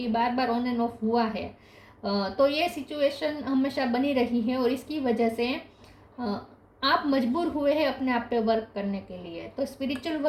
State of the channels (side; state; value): both; identical; correlation 1.00